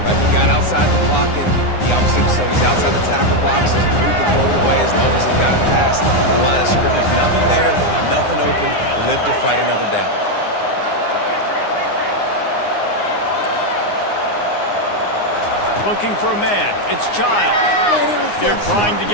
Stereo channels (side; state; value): right; late; 9.7 ms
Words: He got outside the pocket. He obviously, so he's outside the tackle boxes. He could throw it away as long as he got it past the line of scrimmage. Nothing there, nothing open. Live to fight another down. Looking for a man. It's Childs. They're trying to